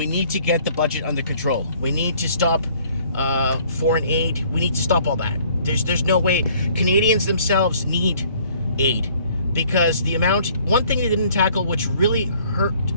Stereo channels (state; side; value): inverted; both; correlation -0.58